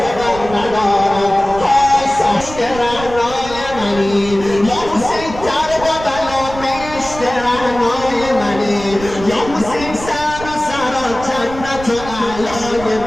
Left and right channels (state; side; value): noise; right; rumble, 12 dB below the sound